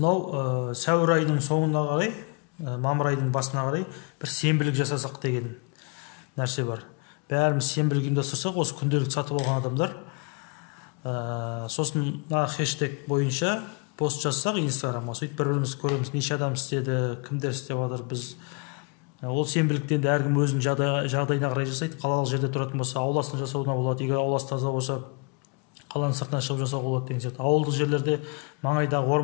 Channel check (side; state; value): right; quieter; 34.0 dB